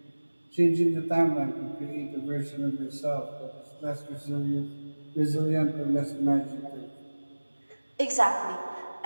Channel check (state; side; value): inverted; both; correlation -1.00